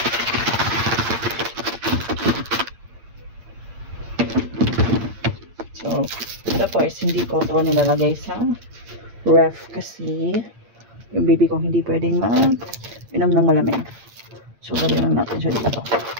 So, tapos hindi ko ito nilalagay sa ref kasi yung baby ko hindi pwedeng inom ng malamig. So, lagyan lang natin siya dito.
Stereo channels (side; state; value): left; late; 8.8 ms